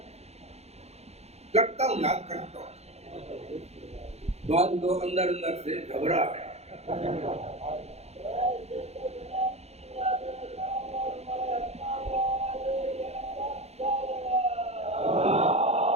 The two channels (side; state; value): left; late; 0.31 ms